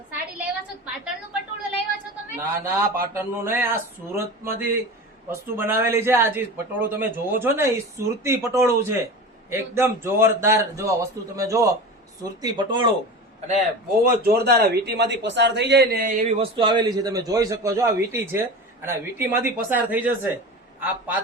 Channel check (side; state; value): both; normal; correlation 0.31